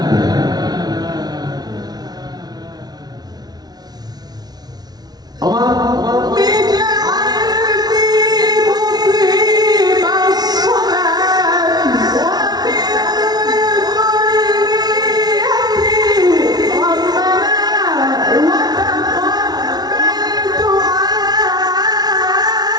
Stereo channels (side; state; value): left; late; 0.19 ms